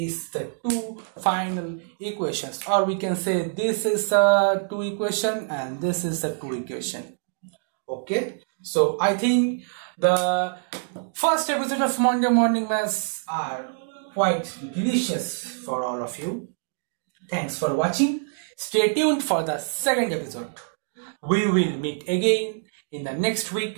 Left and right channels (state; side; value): silent; left; digital silence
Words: the two final equations, or we can say this is the two equation and this is the two equation. Okay, so I think the first episode of Monday Morning Maths are quite delicious for all of you. Thanks for watching. Stay tuned for the second episode. We will meet again in the next